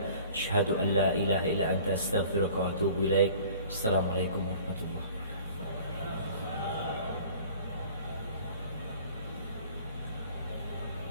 asyhadu an la ilaha illa anta astaghfiruka wa atubu ilaik. Assalamualaikum warahmatullahi wabarakatuh.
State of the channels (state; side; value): inverted; both; correlation -0.48